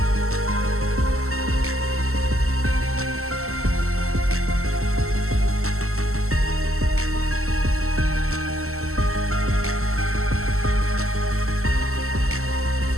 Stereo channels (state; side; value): late; left; 0.63 ms